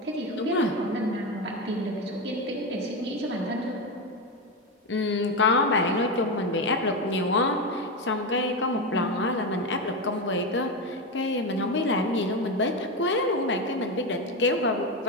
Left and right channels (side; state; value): both; normal; correlation 0.14